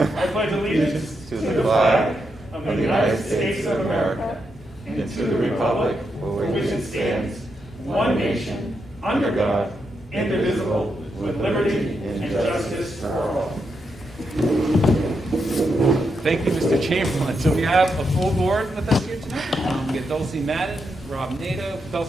I pledge allegiance to the flag of the United States of America and to the republic for which it stands, one nation, under God, indivisible, with liberty and justice for all. Thank you, Mr. Chamberlain. So we have a full board with us here tonight. We get Dulcie Madden, Rob Nato,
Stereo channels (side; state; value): both; normal; correlation 0.83